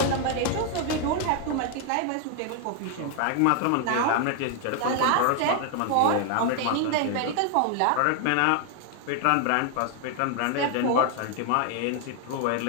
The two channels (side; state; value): both; different; correlation 0.00